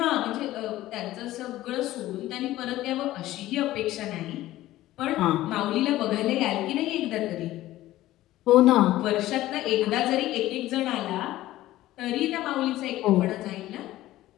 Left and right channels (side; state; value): right; quieter; 15.5 dB